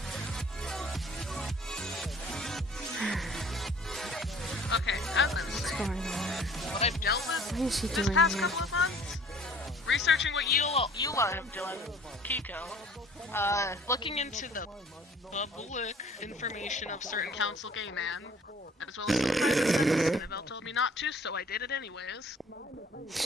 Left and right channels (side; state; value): both; normal; correlation 0.53